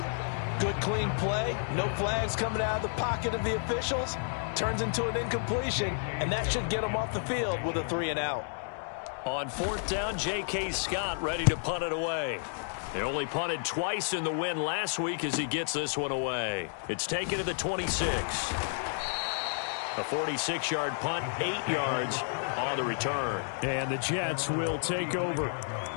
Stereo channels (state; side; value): silent; right; digital silence